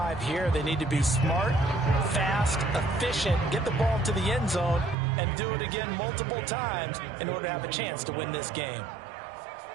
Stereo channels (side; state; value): left; drops out; at 5.0 s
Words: here. They need to be smart, fast, efficient, get the ball to the end zone, and do it again multiple times in order to have a chance to win this game.